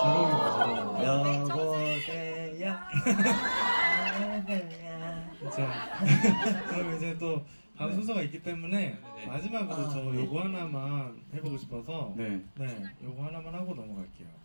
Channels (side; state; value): both; inverted; correlation -1.00